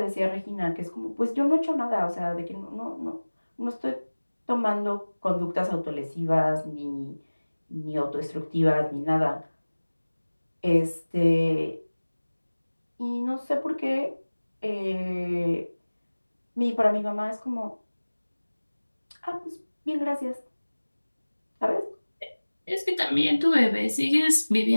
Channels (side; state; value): both; inverted; correlation -1.00